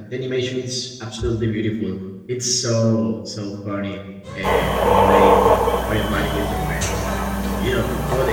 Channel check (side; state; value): both; identical; correlation 1.00